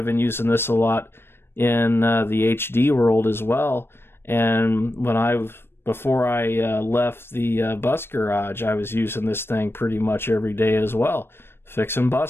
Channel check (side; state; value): right; late; 0.11 ms